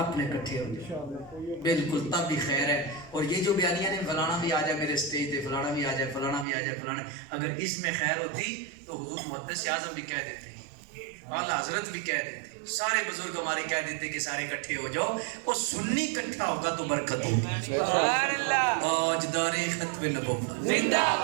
اپنے کٹھے ہو جائے بالکل تب بھی خیر ہے. اور یہ جو بیانیہ نے فلانا بھی آ جائے میرے سٹیج پہ، فلانا بھی آ جائے، فلانا بھی آ جائے، فلانا، اگر اس میں خیر ہوتی تو حضور محدث اعظم بھی کہہ دیتے ہیں، اعلیٰ حضرت بھی کہہ دیتے ہیں، سارے بزرگ ہمارے کہہ دیتے کہ سارے اکٹھے ہو جاؤ، اور سنی اکٹھا ہوگا تو برکت ہوگی. سبحان اللہ. تاجدار ختم نبوت زندہ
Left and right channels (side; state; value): left; drops out; at 6.5 s